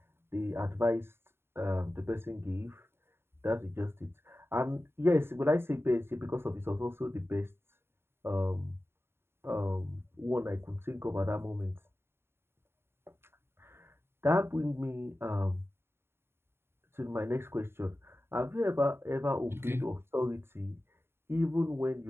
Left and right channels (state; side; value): late; left; 0.11 ms